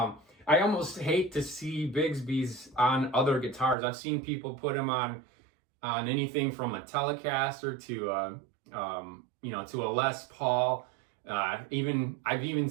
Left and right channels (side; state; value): left; drops out; at 3.8 s